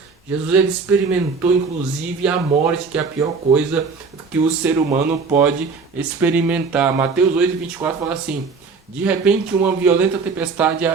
Jesus ele experimentou inclusive a morte, que é a pior coisa que o ser humano pode experimentar. Mateus 8:24 fala assim: de repente uma violenta tempestade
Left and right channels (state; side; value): quieter; left; 4.9 dB